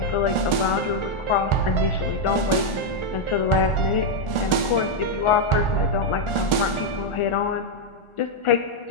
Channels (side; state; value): right; late; 1.4 ms